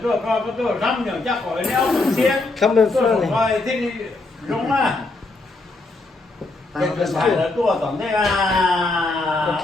tôi coi có tôi răm nhờ chắc khỏi đeo thường xuyên. Come in Tôi front. không coi thích đúng à. Cái phải là tôi tổng thế là.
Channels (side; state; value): right; quieter; 3.2 dB